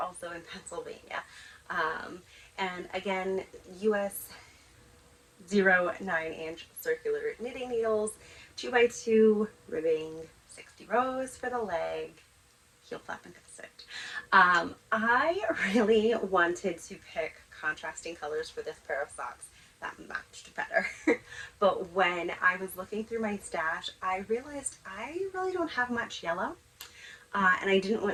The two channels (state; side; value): identical; both; correlation 1.00